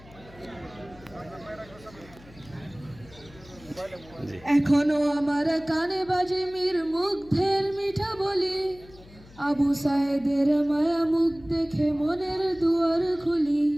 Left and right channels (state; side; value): noise; left; hum, 22 dB below the sound